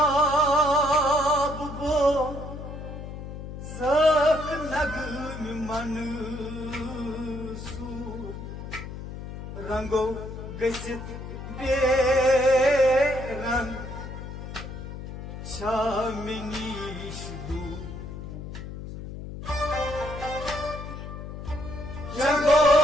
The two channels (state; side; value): noise; left; hum, 9 dB below the sound